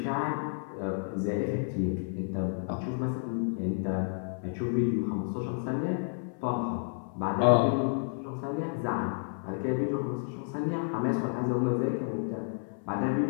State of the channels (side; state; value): right; silent; 57 dB below the other